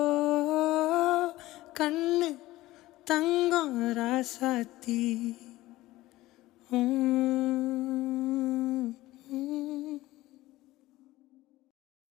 கண்ணு தங்கம் ராசாத்தி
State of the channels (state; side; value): quieter; right; 17.4 dB